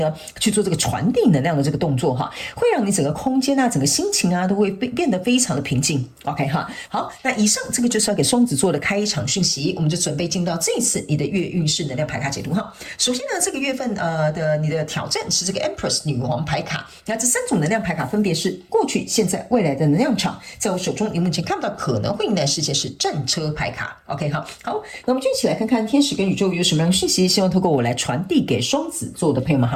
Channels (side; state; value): both; identical; correlation 1.00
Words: 去做這個傳遞能量的這個動作哈，會讓你整個空間啊，整個心情啊都會變得非常的平靜 ，OK 哈。好，那以上這個就是要給雙子座的開場訊息，我們就準備進到這一次你的月運勢能量牌卡解讀哈。首先呢，這個月份的你的挑戰是這個 Empress 女王牌卡，那這3種能量牌卡分別是過去、現在、未來的能量場。在我手中，你目前看不到可能會迎來事件是戰車牌卡。OK 好，那我們就一起來看看天使跟宇宙有什麼樣的訊息，希望透過我來傳遞給雙子座的朋友們，